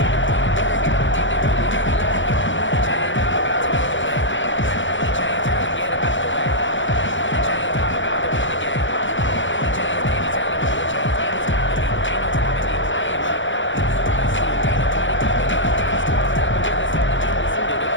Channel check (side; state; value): right; late; 0.55 ms